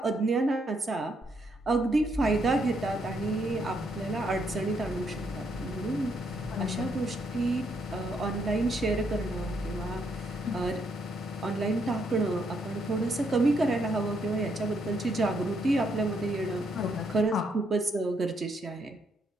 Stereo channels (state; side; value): normal; both; correlation 0.75